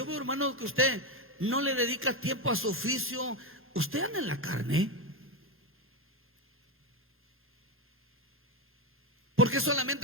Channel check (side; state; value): both; normal; correlation 0.11